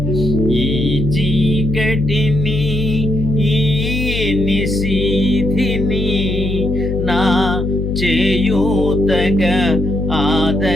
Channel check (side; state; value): left; noise; hum, 3 dB below the sound